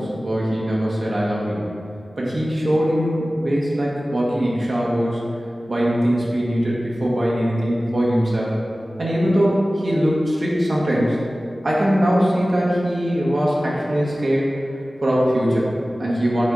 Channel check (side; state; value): both; normal; correlation 0.96